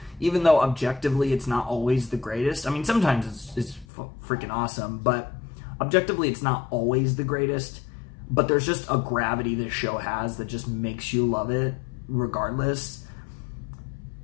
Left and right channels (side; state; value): right; drops out; at 3.9 s